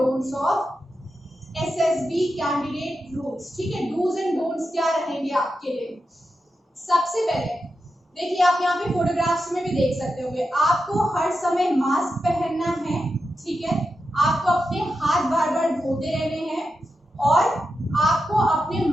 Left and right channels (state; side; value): normal; both; correlation 0.88